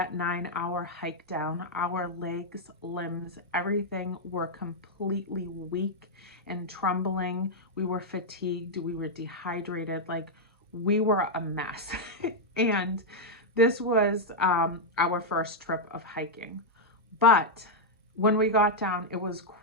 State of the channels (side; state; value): both; normal; correlation -0.03